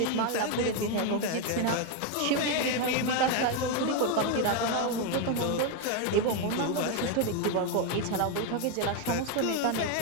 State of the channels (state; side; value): different; both; correlation 0.01